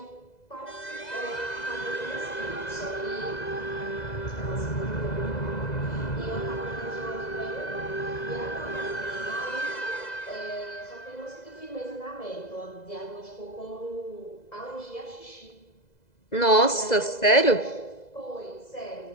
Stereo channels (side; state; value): right; late; 2.0 ms